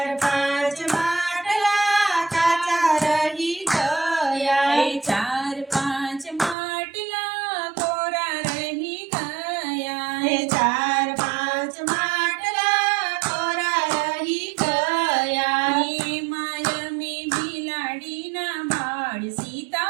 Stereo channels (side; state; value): left; drops out; at 6.6 s